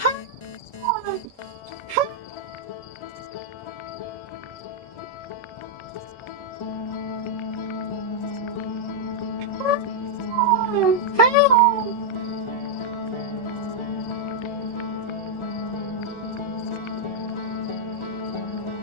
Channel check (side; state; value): right; late; 1.3 ms